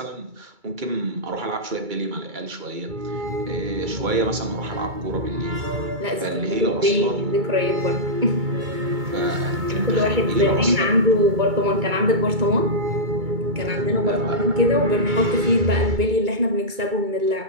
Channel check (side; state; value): left; late; 2.3 ms